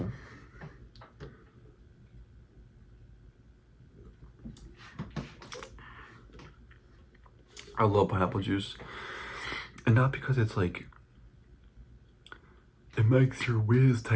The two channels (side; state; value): both; identical; correlation 1.00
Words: I love pineapple juice. And not because it's like, it makes your whiz